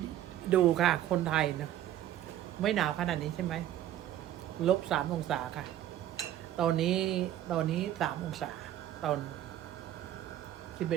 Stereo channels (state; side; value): quieter; left; 12.3 dB